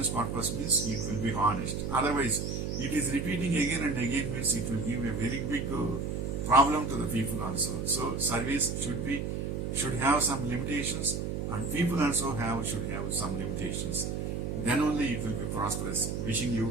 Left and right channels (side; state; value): right; noise; hum, 2 dB below the sound